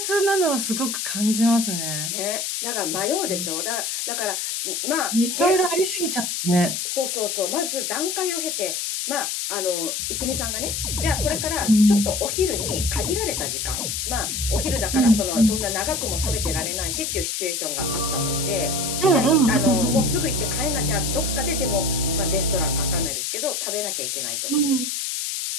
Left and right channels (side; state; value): left; noise; hiss, 2 dB below the sound